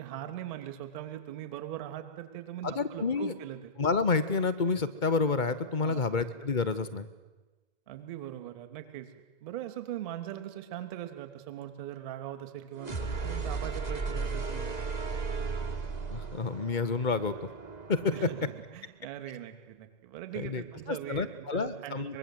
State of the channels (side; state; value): right; late; 2.2 ms